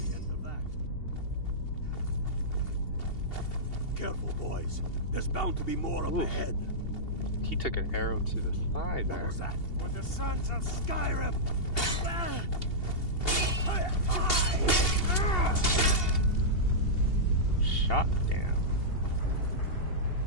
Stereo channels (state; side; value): late; right; 2.7 ms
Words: There's bound to be more up ahead. He took an arrow to the thigh there. What was that? For the sons of Skyrim! Shot down.